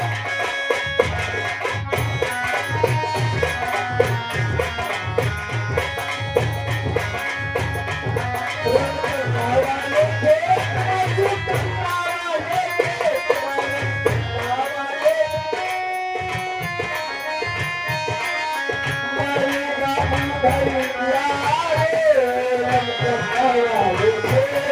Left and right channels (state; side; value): identical; both; correlation 1.00